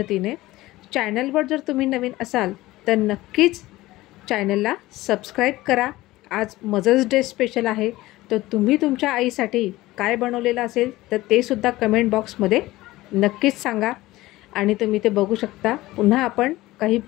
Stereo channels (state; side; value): quieter; right; 17.9 dB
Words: चॅनलवर जर तुम्ही नवीन असाल तर नक्कीच चॅनलला सबस्क्राईब करा। आज मदर्स डे स्पेशल आहे, तर तुम्ही तुमच्या आईसाठी काय बनवलेलं असेल तर ते सुद्धा कमेंट बॉक्समध्ये नक्कीच सांगा। आणि तुम्ही ते बघू शकता, पुन्हा आपण काही